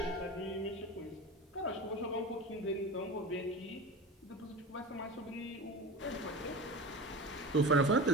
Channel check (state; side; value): normal; both; correlation 0.30